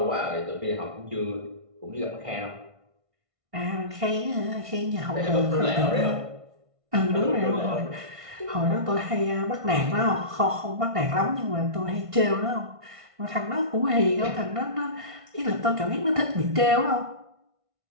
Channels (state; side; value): late; left; 1.5 ms